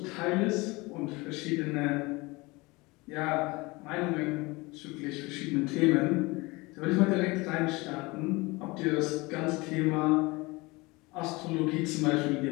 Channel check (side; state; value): right; quieter; 23.9 dB